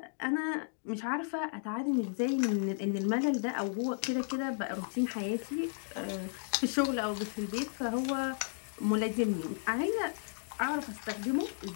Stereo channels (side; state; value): right; silent; digital silence